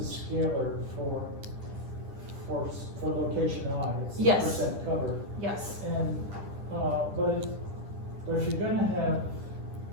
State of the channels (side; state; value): left; late; 9.9 ms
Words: a scalar for location I. It's the Yes. percent cover. yes. And but if you're gonna have